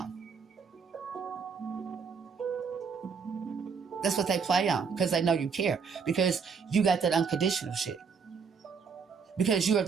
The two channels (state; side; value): quieter; left; 5.8 dB